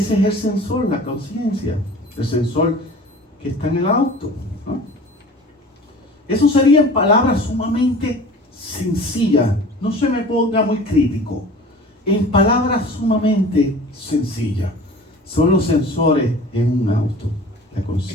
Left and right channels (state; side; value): normal; both; correlation 0.42